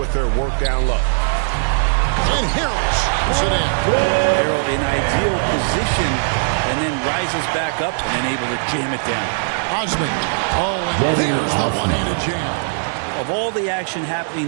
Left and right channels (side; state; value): left; silent; digital silence